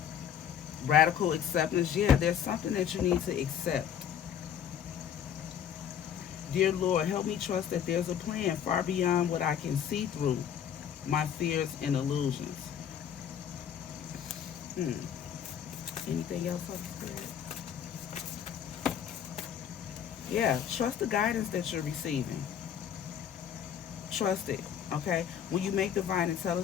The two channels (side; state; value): right; quieter; 9.0 dB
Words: Radical acceptance. Yeah, there's something that you need to accept. Dear Lord, help me trust that there's a plan far beyond what I can see through my fears and illusions. Anything else, Holy Spirit? Yeah, trust the guidance that you're receiving. Trust it, okay? When you make divine